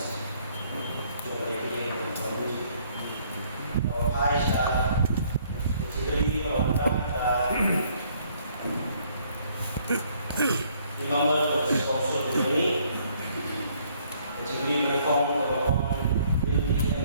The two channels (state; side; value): inverted; both; correlation -0.64